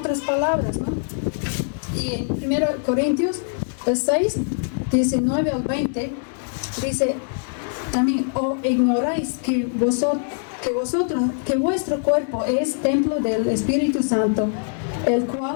palabras, ¿no? Y en 1 Corintios 6, 19 al 20, dice también, o ignoráis que vuestro cuerpo es templo del Espíritu Santo, el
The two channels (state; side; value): silent; right; digital silence